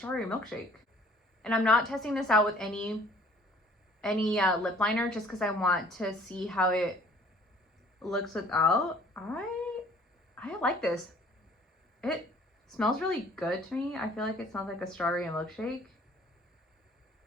milkshake. And I'm not testing this out with any lip liner, just because I want to see how it looks without. I like this. It smells really good to me. I feel like it smells like a strawberry milkshake.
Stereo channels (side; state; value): both; normal; correlation 0.55